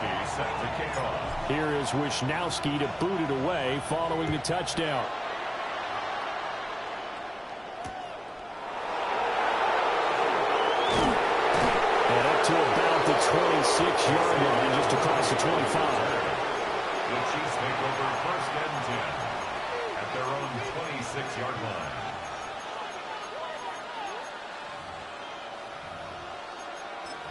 set to kick off. Here is Wishnowsky to boot it away following the touchdown. And up to about the 26-yard line, just across the 25. The Chiefs take over first and 10 at their own 26-yard line.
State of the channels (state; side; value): identical; both; correlation 1.00